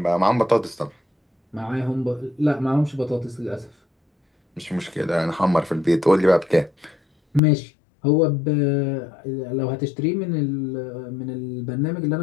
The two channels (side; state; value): right; drops out; at 7.4 s